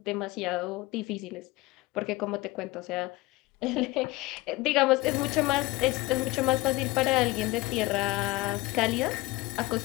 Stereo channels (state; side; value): quieter; right; 21.3 dB